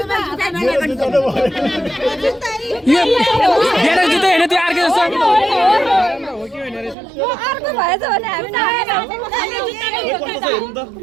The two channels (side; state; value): left; drops out; at 7.0 s